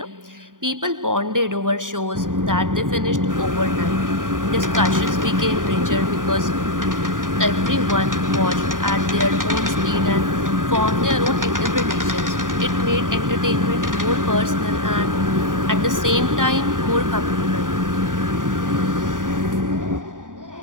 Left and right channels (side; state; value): left; late; 0.89 ms